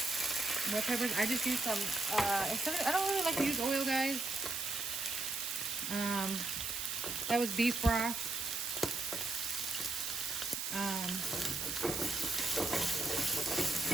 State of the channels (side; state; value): right; noise; hiss, 3 dB below the sound